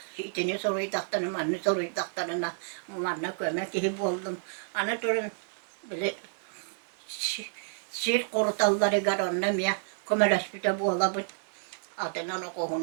itini soruydaqtanı manı soruydaqtanına manna kömek gibi oldum ana durun bile sir korutalları gar onna miya kömeleşpite bu olabın adınan o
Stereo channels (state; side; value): silent; left; 58 dB below the other